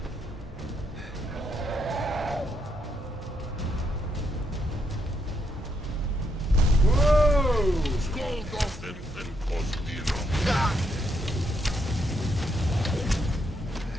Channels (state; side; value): normal; both; correlation 0.77